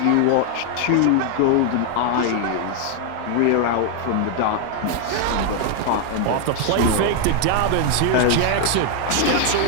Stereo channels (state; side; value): different; both; correlation 0.00